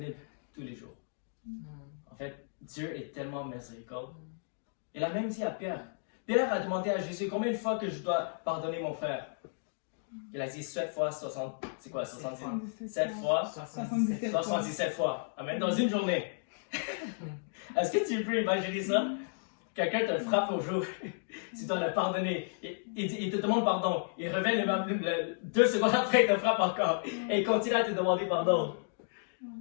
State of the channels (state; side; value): silent; right; digital silence